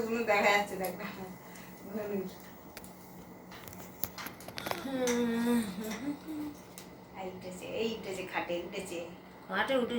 শুনে দেখা যাচ্ছে দেখ ঘনুর। এই উঠেছে খাটে উঠেছে। খাটে উঠে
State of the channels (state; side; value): identical; both; correlation 1.00